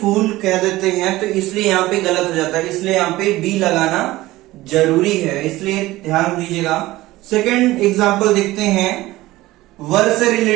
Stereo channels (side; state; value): left; quieter; 17.8 dB